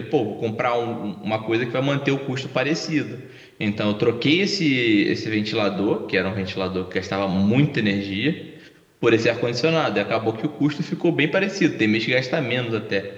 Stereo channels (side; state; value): both; identical; correlation 1.00